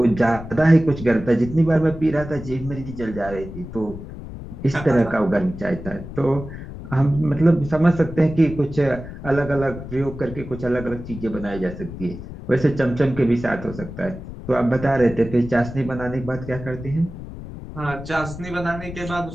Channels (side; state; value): left; noise; rumble, 11 dB below the sound